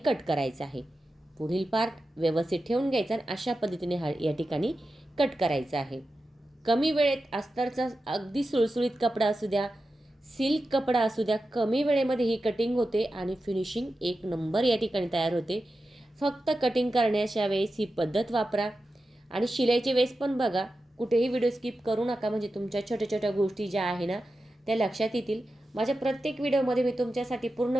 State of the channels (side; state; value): both; normal; correlation 0.92